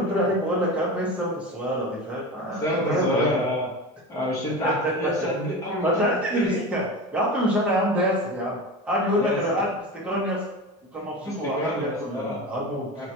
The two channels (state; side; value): normal; both; correlation 0.28